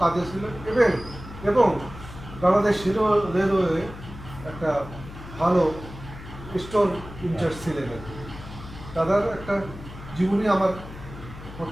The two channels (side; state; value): left; noise; hum, 14 dB below the sound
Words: কাজে ছিলেন এবং বাংলাদেশ রেলওয়ে একটা ভালো স্টোর ইনচার্জ ছিলেন। দাদার একটা জীবনী আমার